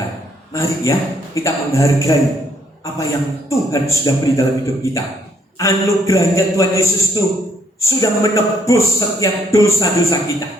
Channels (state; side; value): normal; both; correlation 0.68